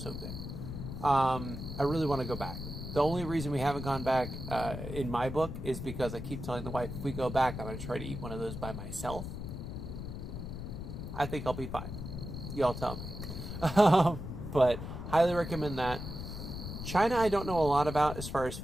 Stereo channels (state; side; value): noise; left; rumble, 7 dB below the sound